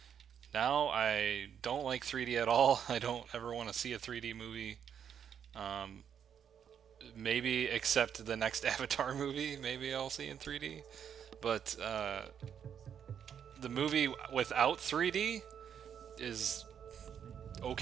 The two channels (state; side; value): quieter; left; 8.3 dB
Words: Now I don't like 3D at all. I don't ever want to see a 3D movie. Um, Maybe except the next Avatar movie, maybe I'll see in 3D. But the movie without 3D is